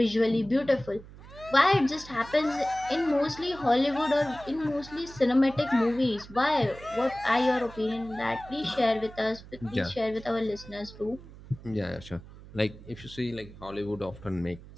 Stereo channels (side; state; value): right; noise; hum, 18 dB below the sound